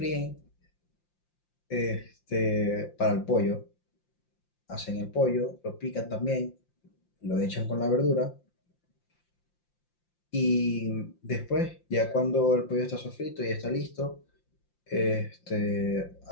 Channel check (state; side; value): late; right; 5.7 ms